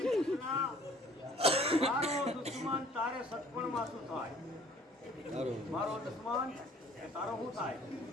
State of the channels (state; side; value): normal; both; correlation 0.54